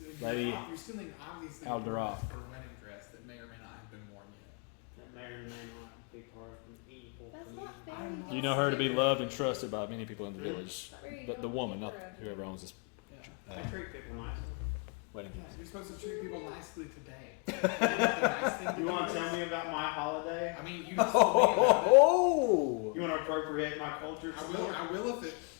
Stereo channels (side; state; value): right; quieter; 34.5 dB